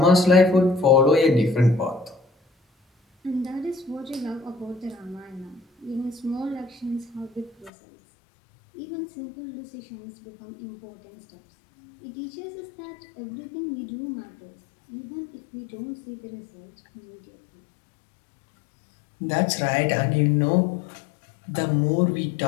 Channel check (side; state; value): right; drops out; at 7.7 s